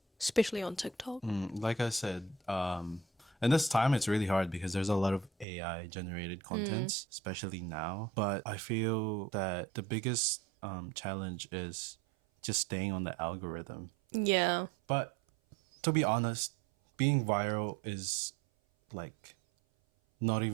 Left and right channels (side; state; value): left; drops out; at 5.5 s